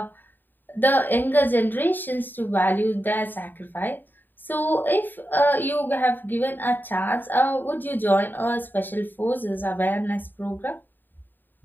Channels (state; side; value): late; right; 0.092 ms